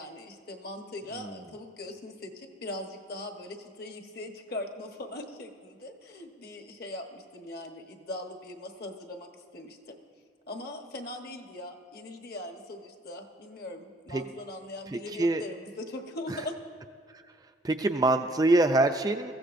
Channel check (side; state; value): both; normal; correlation 0.57